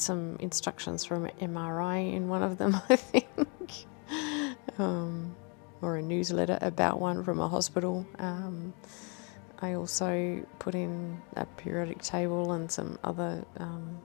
instructions from MRI in one of them, I think, or a newsletter about one from a hospital. I also put in a periodic table and some other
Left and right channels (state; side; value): quieter; right; 35.2 dB